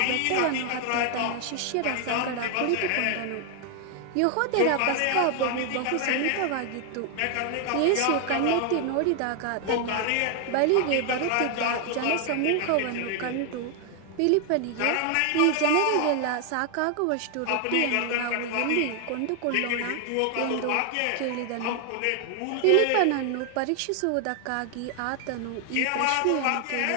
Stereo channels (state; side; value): different; both; correlation 0.00